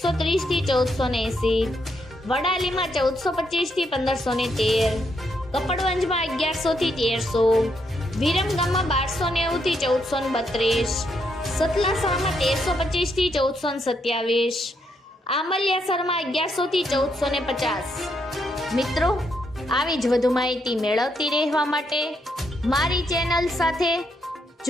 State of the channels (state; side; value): normal; both; correlation 0.77